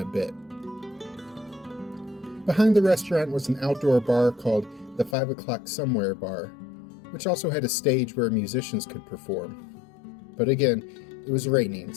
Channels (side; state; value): right; drops out; at 5.2 s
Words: a bit. Behind the restaurant was an outdoor bar called the 5 O'Clock Somewhere Bar, which also had a stage where musicians could perform. But again, it was raining,